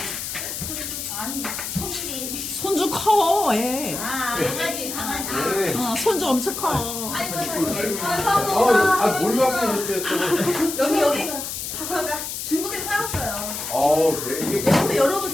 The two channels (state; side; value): noise; left; hiss, 6 dB below the sound